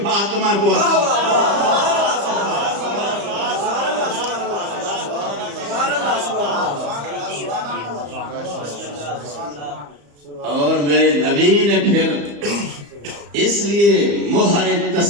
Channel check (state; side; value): late; left; 35 ms